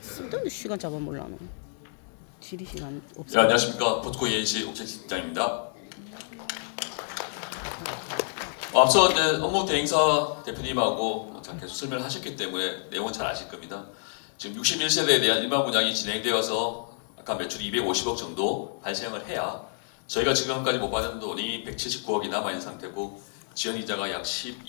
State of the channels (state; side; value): silent; right; 59 dB below the other